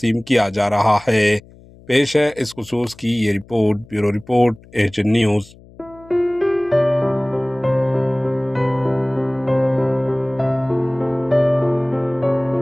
किया जा रहा है। पेश है इस खुसूस की ये report. Bureau report, Asian news.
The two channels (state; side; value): noise; left; hum, 24 dB below the sound